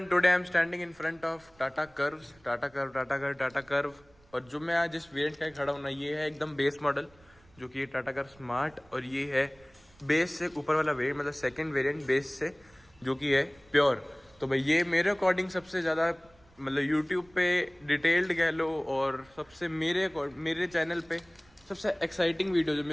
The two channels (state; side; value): noise; right; rumble, 29 dB below the sound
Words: today I am standing in front of Tata curve. और जो मैं आज इस वेरिएंट का खड़ा हूँ ना, ये है एकदम बेस मॉडल, जो कि ये टाटा कर्व स्मार्ट, और ये है बेस से ऊपर वाला वेरिएंट, मतलब सेकंड वेरिएंट बेस से, जो कि है प्योर। तो भाई ये मेरे अकॉर्डिंग सबसे ज़्यादा मतलब यूट्यूब पे डिटेल्ड कह लो, और सबसे मेरे चैनल पे सबसे एक्साइटिंग वीडियो जो